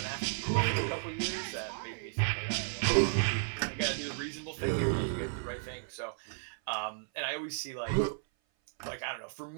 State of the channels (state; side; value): silent; left; 55 dB below the other